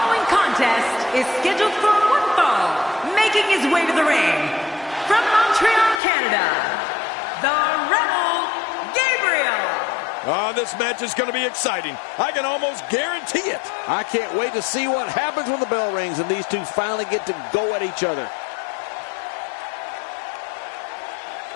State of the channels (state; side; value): drops out; right; at 6.0 s